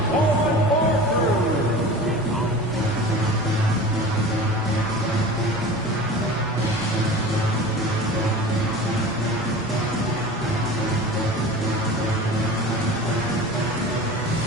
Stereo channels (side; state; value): both; normal; correlation 0.36